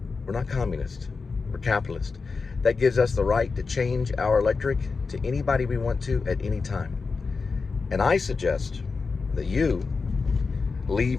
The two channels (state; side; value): quieter; right; 4.6 dB